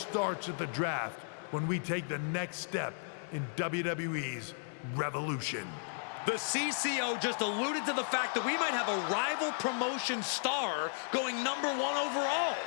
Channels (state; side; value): silent; right; digital silence